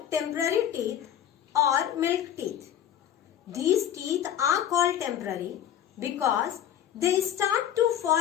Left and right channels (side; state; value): right; quieter; 10.4 dB